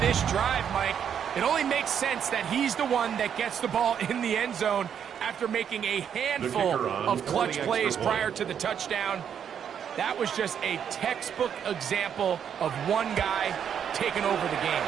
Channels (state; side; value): quieter; left; 8.3 dB